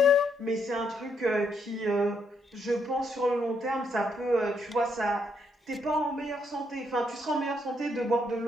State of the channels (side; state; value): both; normal; correlation 0.74